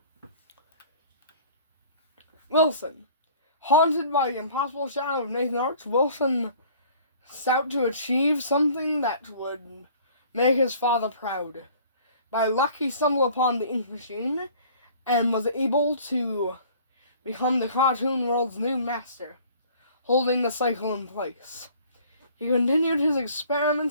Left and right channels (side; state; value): both; inverted; correlation -0.51